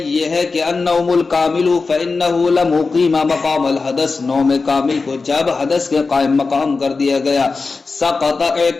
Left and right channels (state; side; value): quieter; right; 4.2 dB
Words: ہے کہ النوم الکامل فإنہ لم يقیم مقام الحدث، نوم کامل کو جب حدث کے قائم مقام کر دیا گیا، سقط